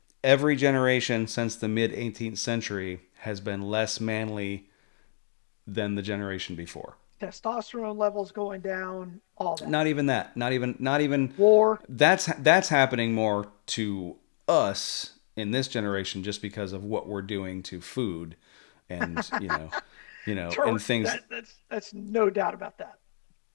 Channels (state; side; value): silent; right; digital silence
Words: every generation since the mid 18th century has been less manly than the generation before. Testosterone levels going down, all that. Not even that. Not even War. that's happening more to us in this generation just because of what we're doing to food and and things. That's no doubt about that.